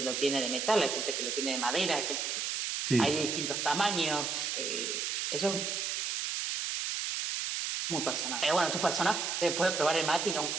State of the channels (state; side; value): noise; right; hiss, 1 dB below the sound